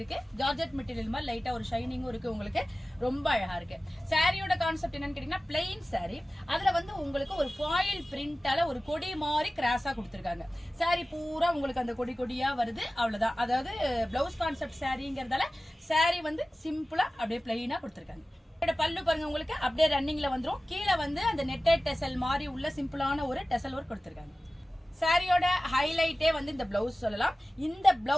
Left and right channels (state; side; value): normal; both; correlation 0.96